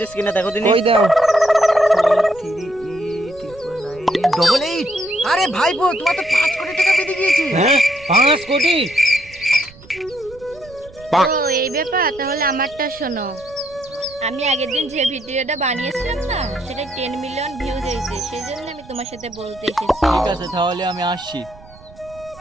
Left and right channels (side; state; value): right; noise; rumble, 23 dB below the sound